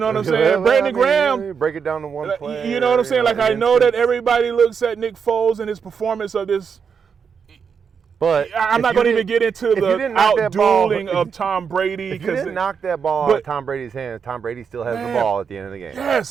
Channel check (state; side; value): quieter; left; 6.4 dB